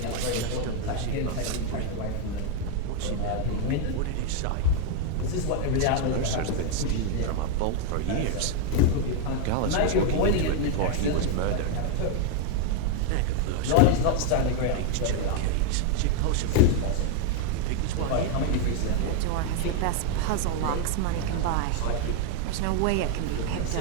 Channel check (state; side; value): different; both; correlation 0.00